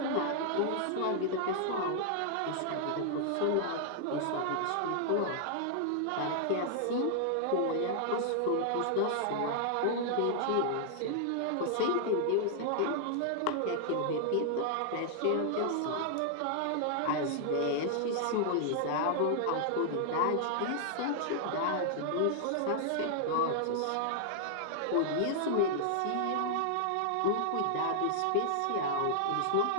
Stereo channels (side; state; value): both; different; correlation -0.01